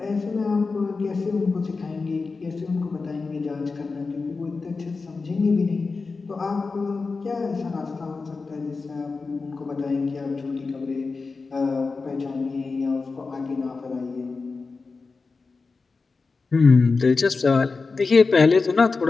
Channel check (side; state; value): right; quieter; 4.2 dB